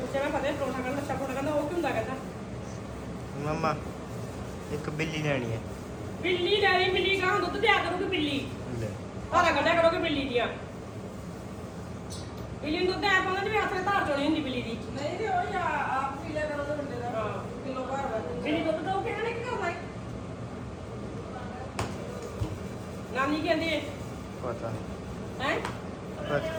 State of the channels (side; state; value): both; identical; correlation 1.00